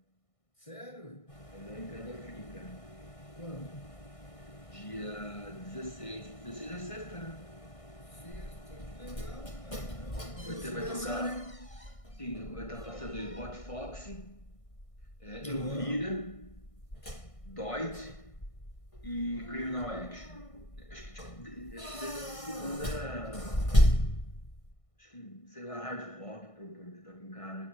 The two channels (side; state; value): right; late; 1.6 ms